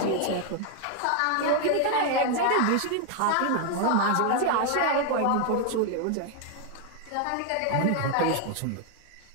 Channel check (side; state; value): both; different; correlation 0.01